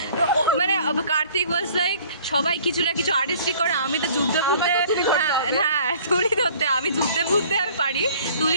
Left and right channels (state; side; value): inverted; both; correlation -0.53